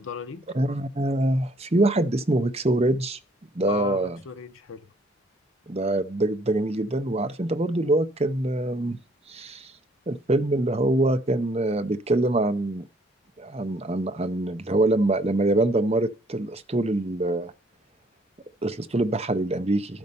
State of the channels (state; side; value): normal; both; correlation 0.64